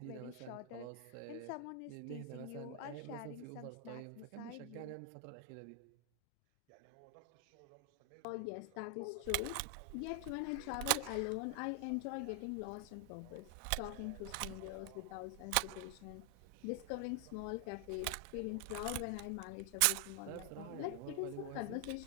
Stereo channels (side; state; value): both; different; correlation 0.00